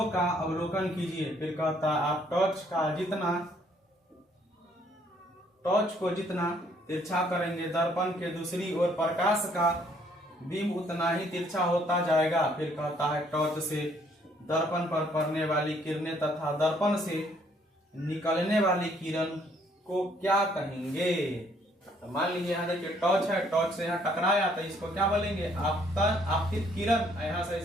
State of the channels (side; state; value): both; normal; correlation 0.65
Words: का अवलोकन कीजिए। फिर कहता है आप टॉर्च को जितना तिरछा करेंगे दर्पण के दूसरी ओर प्रकाश का बिंब उतना ही तिरछा होता जाएगा। फिर कहता है टॉर्च से दर्पण पर पड़ने वाली किरणें तथा दर्पण से निकलने वाली किरण को क्या कहेंगे। तो मान लीजिए यहाँ देखिए टॉर्च है, टॉर्च से यहाँ टकराया तो इसको क्या बोलेंगे आपतित किरण। यहाँ से